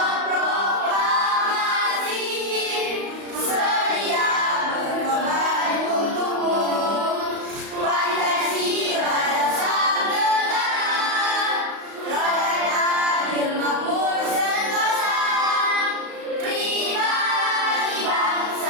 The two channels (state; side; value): late; left; 34 ms